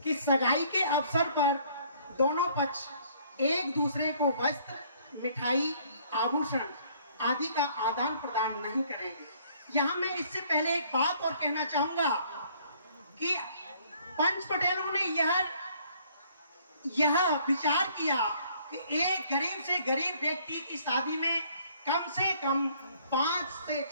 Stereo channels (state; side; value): inverted; both; correlation -0.61